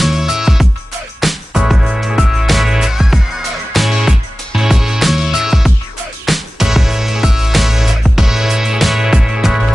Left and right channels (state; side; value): normal; both; correlation 0.96